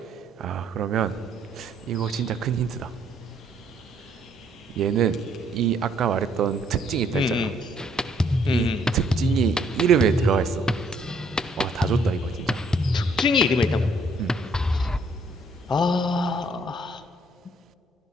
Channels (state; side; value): normal; both; correlation 0.66